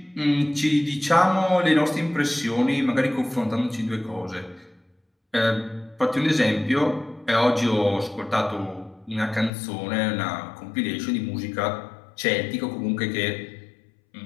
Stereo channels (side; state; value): right; drops out; at 9.5 s